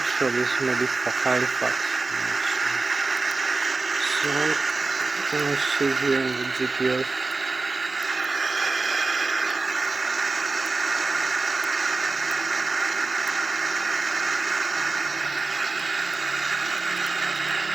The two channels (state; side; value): quieter; left; 3.7 dB